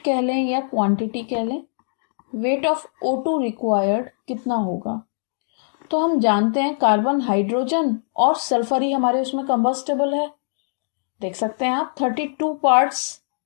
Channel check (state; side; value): silent; right; digital silence